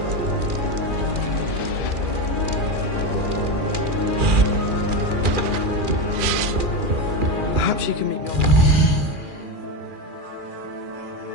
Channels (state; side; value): late; left; 2.4 ms